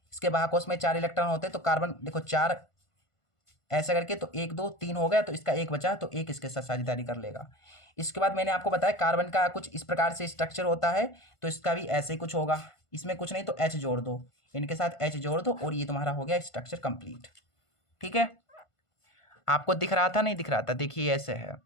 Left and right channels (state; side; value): late; right; 1.5 ms